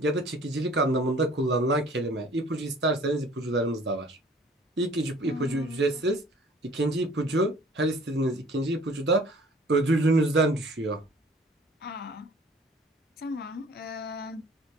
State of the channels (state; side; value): normal; both; correlation 0.52